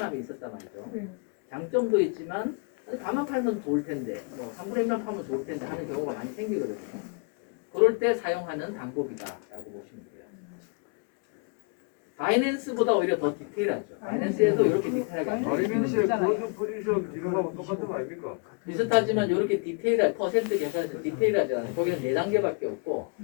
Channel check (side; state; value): right; quieter; 34.4 dB